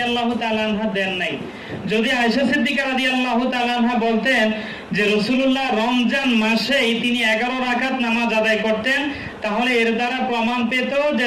তাআলা আনহা দেন নাই, যদি আয়েশা সিদ্দিকা রাদিয়াল্লাহু তাআলা আনহা বলতেন যে রাসূলুল্লাহ রমজান মাসেই তিনি 11 রাকাত নামাজ আদায় করতেন, তাহলে এর দ্বারা প্রমাণ পেত যে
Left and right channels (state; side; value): identical; both; correlation 1.00